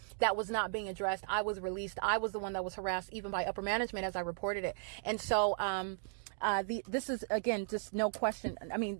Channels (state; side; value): silent; left; digital silence